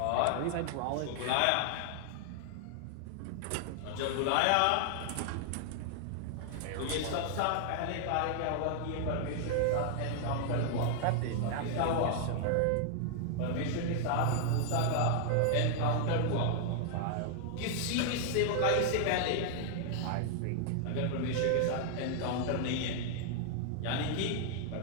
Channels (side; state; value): both; different; correlation 0.00